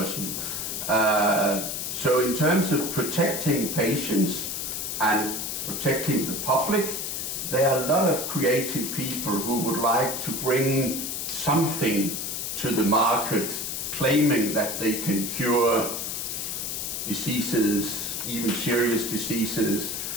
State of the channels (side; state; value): left; noise; hiss, 3 dB below the sound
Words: So in terms of protecting patients and protecting the public, there are a lot of creative people who would like to bring something to the market, claiming that they can cure diseases, even serious diseases.